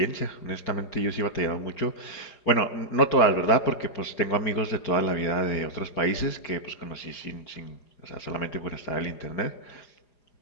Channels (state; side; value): late; right; 4.9 ms